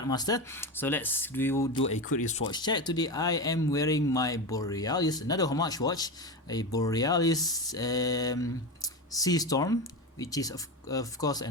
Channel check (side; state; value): both; normal; correlation 0.20